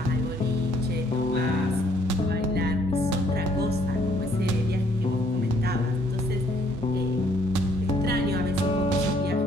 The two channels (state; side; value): normal; both; correlation 0.65